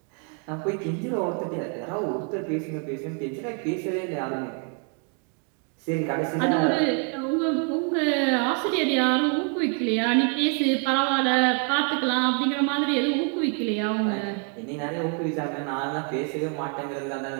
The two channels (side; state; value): left; quieter; 38.6 dB